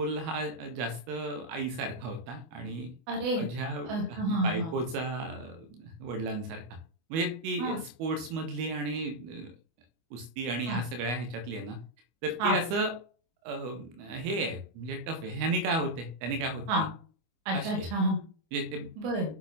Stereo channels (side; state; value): left; late; 25 ms